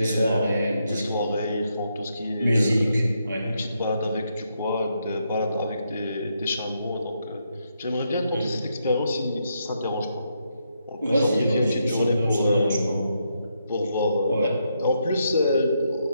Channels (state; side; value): inverted; both; correlation -0.79